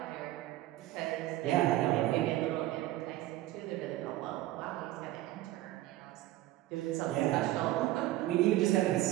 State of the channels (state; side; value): quieter; left; 15.9 dB